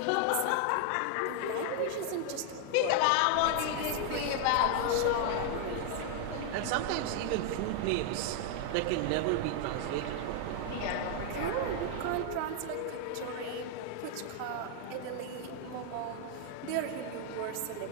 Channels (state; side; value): different; both; correlation 0.00